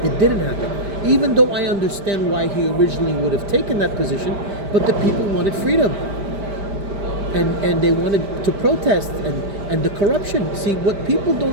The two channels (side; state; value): left; late; 5.1 ms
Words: It didn't happen. Even though I understand why he originally would have taken that position, but the people wanted freedom. And they wanted to protest and the corruption. See, what people